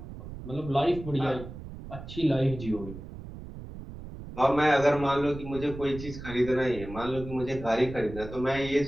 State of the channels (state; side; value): noise; right; rumble, 12 dB below the sound